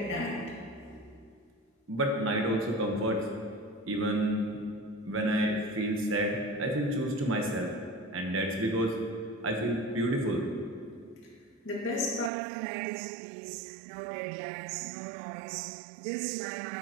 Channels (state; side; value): drops out; left; at 12.3 s